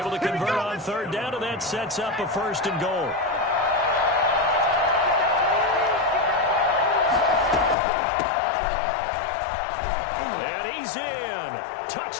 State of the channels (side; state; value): right; drops out; at 7.8 s